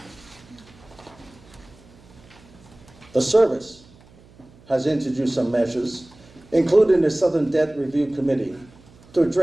The service has introduced some measures, including the Southern Death Review Committee, to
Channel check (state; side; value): noise; right; hum, 26 dB below the sound